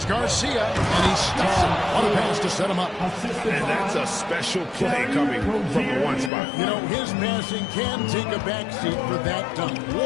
Garcia. And he stuffs him. What a pass to set him up. And that's a special play coming from the 1 spot. You know, his passing can take a backseat for that dunk.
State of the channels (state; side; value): drops out; right; at 6.3 s